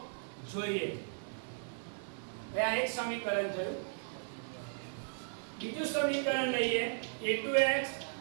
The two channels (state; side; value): silent; left; digital silence